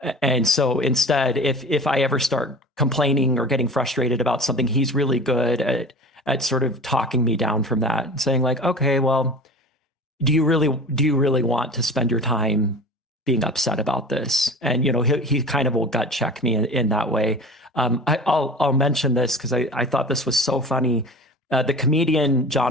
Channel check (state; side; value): normal; both; correlation 0.37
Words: And so instead, if I ever start complaining or getting frustrated about something, he's really good at sort of talking me down from that and saying like, okay, well, do you really want to spend your time being upset about this? And, he kind of will gut check me in that way. I'll mention this because I thought this was so funny. The comedian